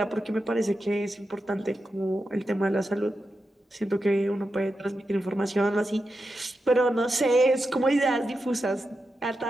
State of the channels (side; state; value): both; normal; correlation 0.89